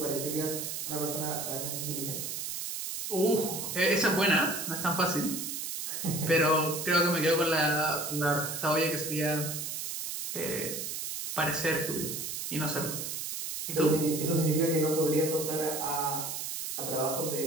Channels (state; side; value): noise; right; hiss, 4 dB below the sound